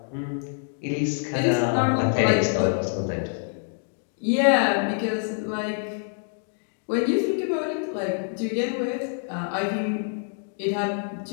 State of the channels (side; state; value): right; silent; digital silence